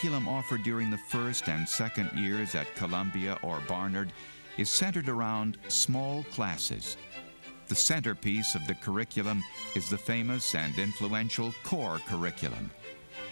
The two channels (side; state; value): both; inverted; correlation -1.00